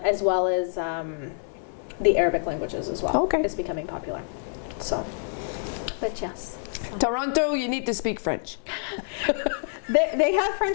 well as the Arabic languages as well. Okay. Is becoming popular. So, but yes. Toronto, you need to speak French. They have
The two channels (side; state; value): right; silent; 60 dB below the other